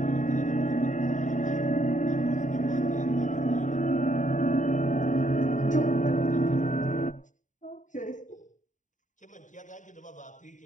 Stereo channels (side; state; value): right; late; 0.36 ms